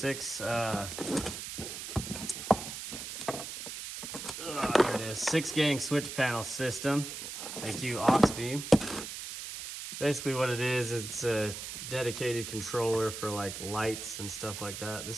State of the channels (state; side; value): noise; right; hiss, 8 dB below the sound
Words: gang switch panel system. Thank you, AUX Beam. Basically what it is, it's a dedicated controller for like lights and stuff like that.